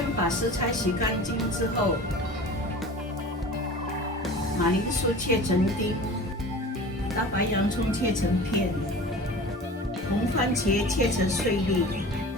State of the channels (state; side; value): normal; both; correlation 0.38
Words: 把食材洗干净之后，马铃薯切成丁，大白洋葱切成片，红番茄切成碎粒